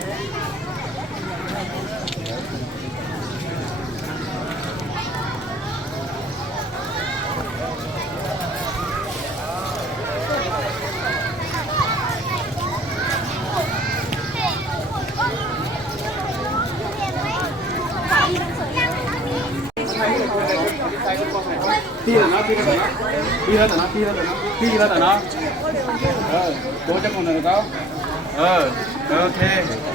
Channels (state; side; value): normal; both; correlation 0.53